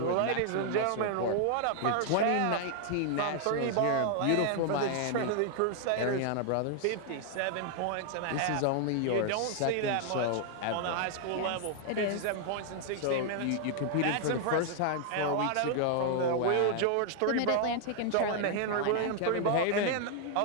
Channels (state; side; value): different; both; correlation 0.00